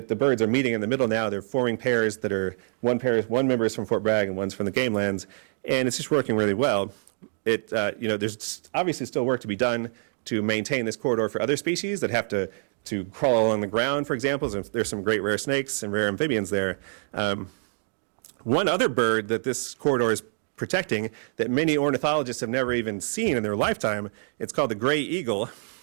the birds are meeting in the middle now. They're forming pairs that are one member is from Fort Bragg and one's from the Game Lands, and it's just working really well. There's obviously still work to be done to maintain this corridor for other species that have to crawl along the ground, for example. There's some great rare snakes and rare amphibians there. One other bird that this corridor is protecting that many ornithologists have never even seen in their lifetime, it's called the gray eagle.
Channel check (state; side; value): silent; left; digital silence